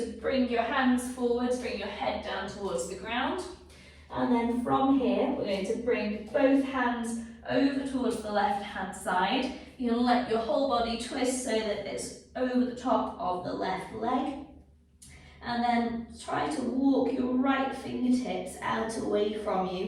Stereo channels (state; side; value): identical; both; correlation 1.00